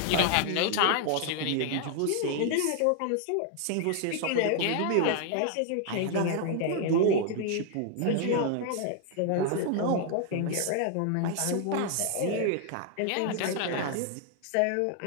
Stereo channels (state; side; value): different; both; correlation 0.00